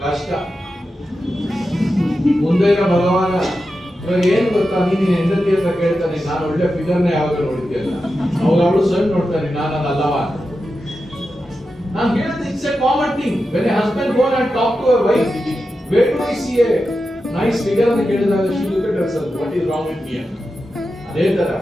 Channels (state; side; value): normal; both; correlation 0.90